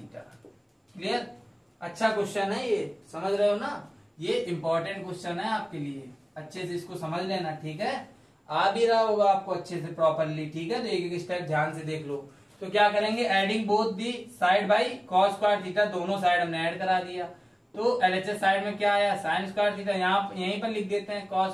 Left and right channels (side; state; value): both; identical; correlation 1.00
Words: Clear, अच्छा क्वेश्चन है ये, समझ रहे हो ना, ये इंपॉर्टेंट क्वेश्चन है आपके लिए, अच्छे से इसको समझ लेना। ठीक है, आ भी रहा होगा आपको अच्छे से प्रॉपरली। ठीक है, तो एक एक स्टेप ध्यान से देख लो। तो क्या करेंगे, adding both the side by cos square theta, दोनों साइड हमने ऐड करा दिया। तो LHS साइड में क्या आया, साइन स्क्वायर थीटा, यहाँ यहीं पर लिख देते हैं कॉस